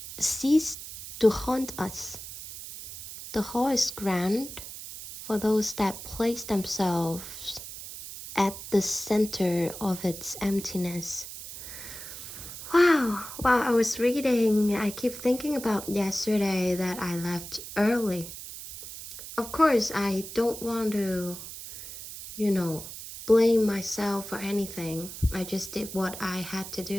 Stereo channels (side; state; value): right; noise; hiss, 11 dB below the sound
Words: cease to haunt us. The hall is grand for those that place themselves at the center of its emptiness. Wow, while I was reading, I keep thinking about yesterday that I left early. Of course, I don't want to, blame myself for anything. I just did what I had to